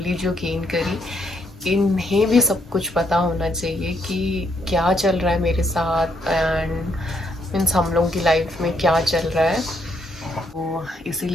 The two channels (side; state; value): both; normal; correlation 0.74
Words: जो गेन करी, इन्हें भी सब कुछ पता होना चाहिए कि क्या चल रहा है मेरे साथ एंड मीन्स हम लोगों की लाइफ में क्या चल रहा है. तो